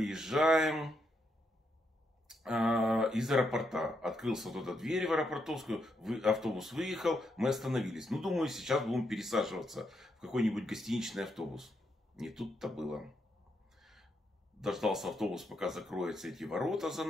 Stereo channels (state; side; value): normal; both; correlation 0.80